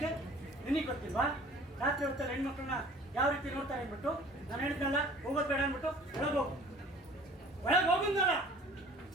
ನಿನಗೆ ಗೊತ್ತಿಲ್ವಾ? ರಾತ್ರಿ ಹೊತ್ತಲ್ಲಿ ಹೆಣ್ಮಕ್ಳನ್ನ ಯಾವ ರೀತಿ ನೋಡ್ತಾರೆ ಅಂದ್ಬಿಟ್ಟು ನಾನು ಹೇಳಿದ್ನಲ್ಲ, ಹೋಗೋದು ಬೇಡ ಅಂದ್ಬಿಟ್ಟು ಒಳಗೆ ಹೋಗಿದ್ನಲ್ಲ.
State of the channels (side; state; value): both; normal; correlation 0.48